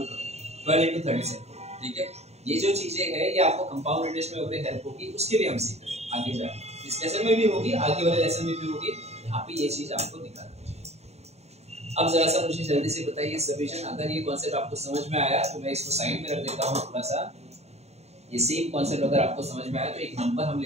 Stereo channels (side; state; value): left; late; 0.31 ms